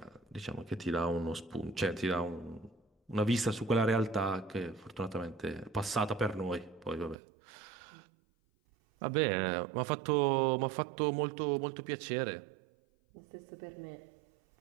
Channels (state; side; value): drops out; left; at 7.2 s